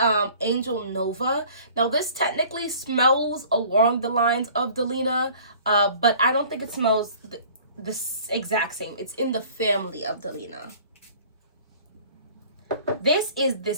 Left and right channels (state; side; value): inverted; both; correlation -0.49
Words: Angel Nova. Now, this technically smells along the lines of Delina, but I don't think it smells the exact same. It's in the family of Delina. This is